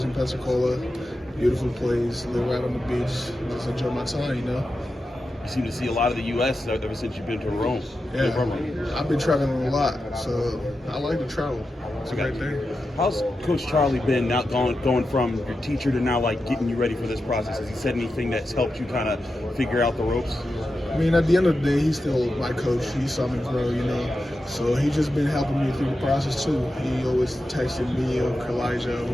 in Pensacola. Beautiful place, live right on the beach. Just enjoy my time, You seem to see a lot of the U.S. ever since you've been to Rome. Yeah, I've been traveling a lot, so I like to travel. It's a great thing. How's Coach Charlie been now going from your teacher to now like getting you ready for this process? Has he said anything that's helped you kind of figure out the ropes? I mean, at the end of the day, he's still my coach. He saw me grow, So he's just been helping me through the process too. He always texting me or Elijah,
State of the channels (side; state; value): both; normal; correlation 0.90